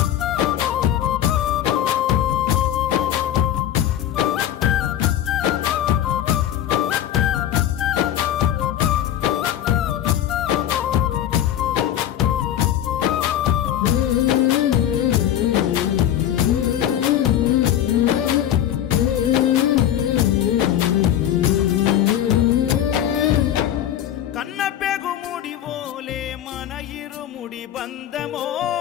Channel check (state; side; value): quieter; right; 11.2 dB